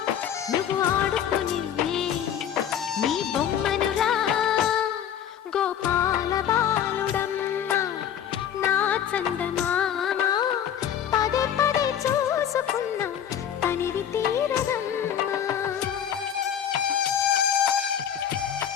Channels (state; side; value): quieter; right; 9.3 dB